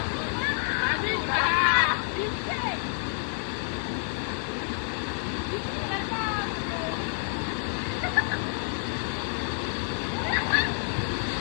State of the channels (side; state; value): right; silent; 59 dB below the other